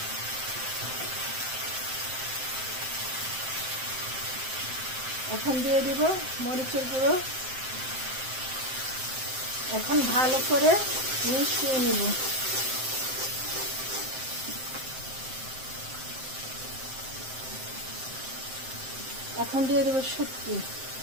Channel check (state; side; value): late; left; 7.7 ms